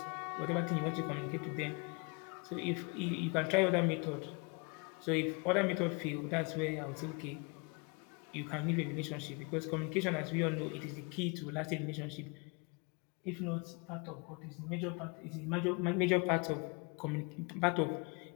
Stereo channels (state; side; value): quieter; right; 32.0 dB